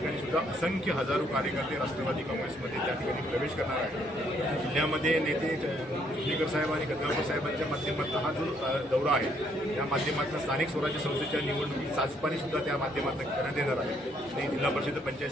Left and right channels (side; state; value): both; normal; correlation 0.69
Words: सुद्धा असंख्य हजारो कार्यकर्ते राष्ट्रवादी काँग्रेसमध्ये त्या ठिकाणी प्रवेश करणार आहेत. जिल्ह्यामध्ये नेते चिखलीकर साहेब आणि गंगापूर साहेबांच्या माध्यमातून हा जो दौरा आहे त्या माध्यमातून स्थानिक स्वराज्य संस्थेच्या निवडणुकीची चाचपणी सुद्धा त्या माध्यमातून करण्यात येणार आहे. आणि जिल्हा परिषद, पंचायत